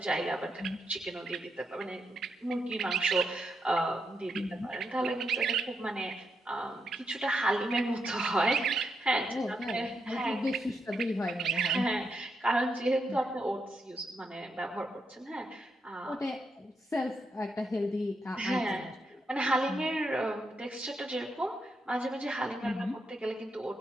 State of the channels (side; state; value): both; normal; correlation 0.82